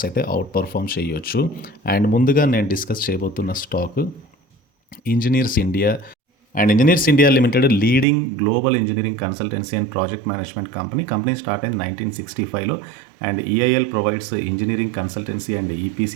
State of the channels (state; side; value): drops out; left; at 8.1 s